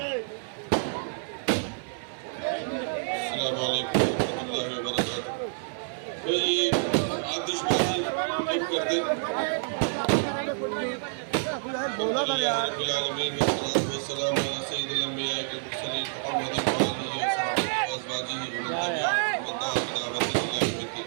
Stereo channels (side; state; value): left; silent; 57 dB below the other